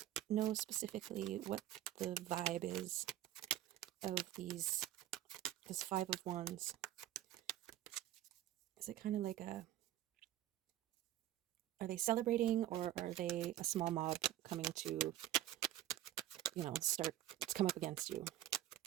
know specifically what the vibe is of this Five of Wands? Is it kind of like are they celebrating, or are they a small mob coming to, start to come up against you?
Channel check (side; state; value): left; quieter; 13.0 dB